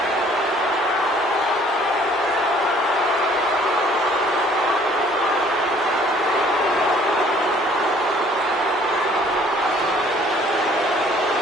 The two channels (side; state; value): both; normal; correlation 0.57